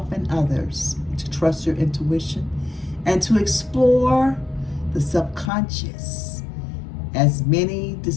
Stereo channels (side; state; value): right; drops out; at 5.5 s